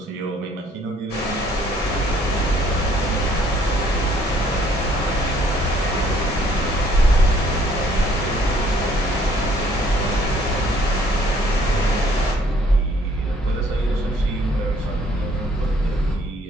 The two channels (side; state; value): both; normal; correlation 0.61